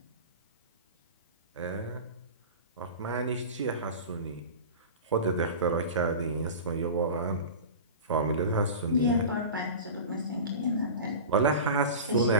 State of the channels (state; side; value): inverted; both; correlation -0.32